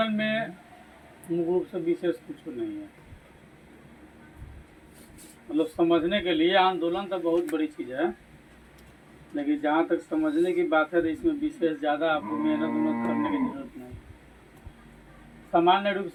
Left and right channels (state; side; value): identical; both; correlation 1.00